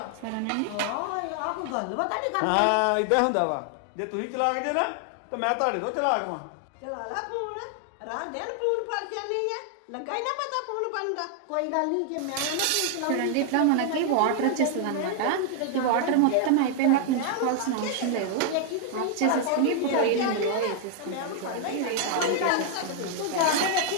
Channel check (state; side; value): different; both; correlation 0.00